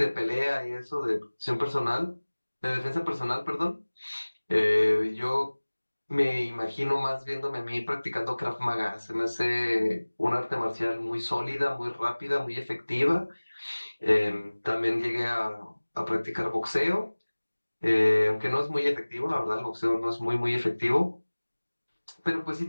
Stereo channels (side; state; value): both; inverted; correlation -1.00